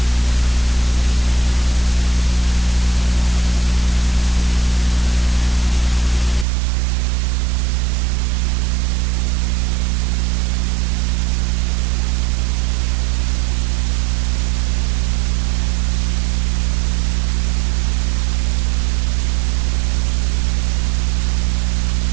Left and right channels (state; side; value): drops out; left; at 6.5 s